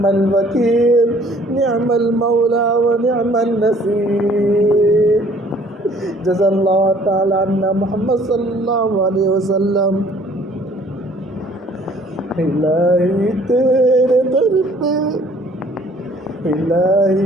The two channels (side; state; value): both; normal; correlation 0.57